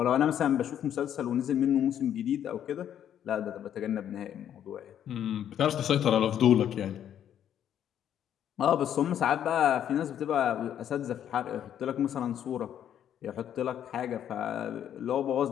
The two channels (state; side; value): quieter; right; 10.0 dB